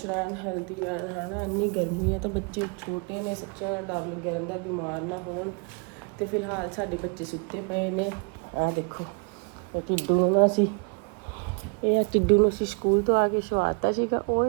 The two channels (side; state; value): left; quieter; 35.4 dB